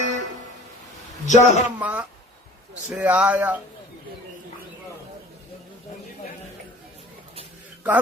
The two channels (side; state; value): both; normal; correlation 0.47